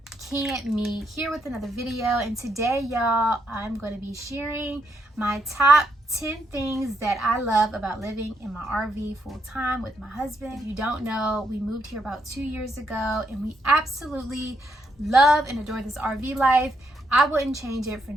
Can't Me, here with another video. And today, y'all, I'm going to be sharing my top 10 things that I love about living in my RV full time with my husband. If you don't know, we moved here about 2 years ago and we absolutely love and adore this RV life. I wouldn't change it for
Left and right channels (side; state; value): both; normal; correlation 0.77